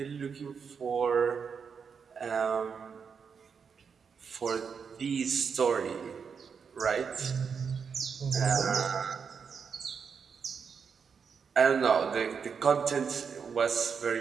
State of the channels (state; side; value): quieter; left; 6.2 dB